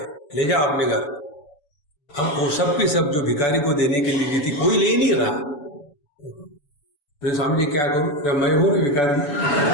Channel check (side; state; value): right; late; 6.9 ms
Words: ले जाओ अपने घर। हम वो सब की सब जो भिखारी को देने के लिए दी थी, कोई ले नहीं रहा। तो स्वामी जी क्या करूं, जब मैं हूं ना भिखारी,